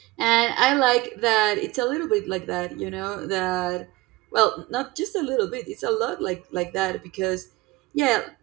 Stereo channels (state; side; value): quieter; left; 20.2 dB